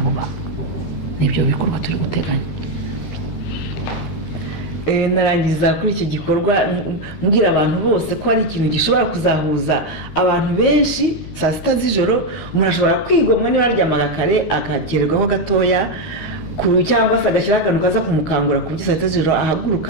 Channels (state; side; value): late; right; 13 ms